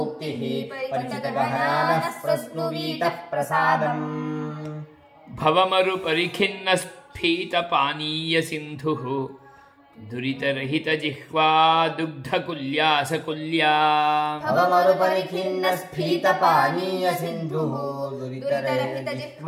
परिचितगहनानः प्रस्नुवीतप्रसादम् भवमरुपरिखिन्नस्फीतपानीयसिन्धुः दुरितरहितजिह्वा दुग्धकुल्यासकुल्या भवमरुपरिखिन्नस्फीतपानीयसिन्धुः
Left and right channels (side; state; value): both; identical; correlation 1.00